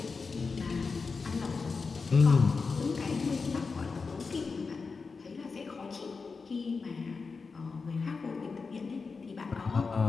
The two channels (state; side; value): quieter; right; 4.6 dB